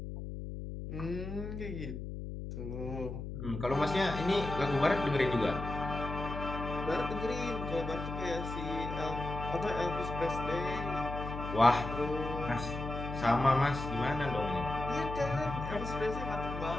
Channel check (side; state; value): left; noise; hum, 7 dB below the sound